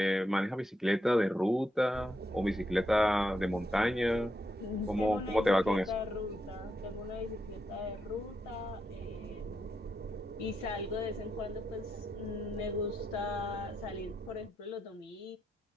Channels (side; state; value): both; normal; correlation 0.83